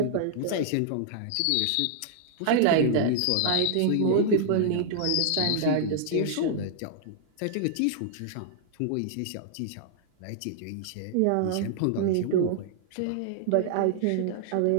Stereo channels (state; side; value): different; both; correlation -0.01